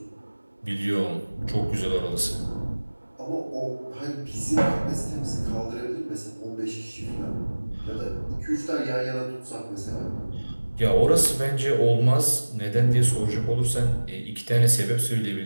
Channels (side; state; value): both; inverted; correlation -1.00